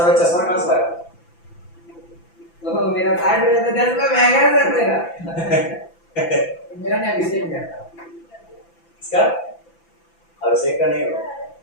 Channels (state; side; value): late; right; 5.9 ms